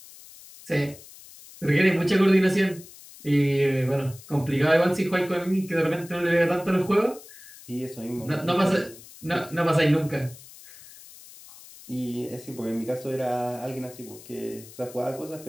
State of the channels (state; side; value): noise; left; hiss, 19 dB below the sound